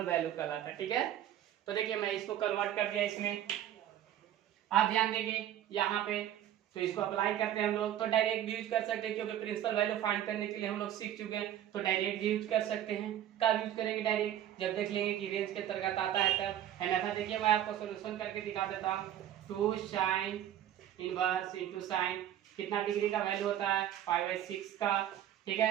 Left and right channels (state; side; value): quieter; left; 11.4 dB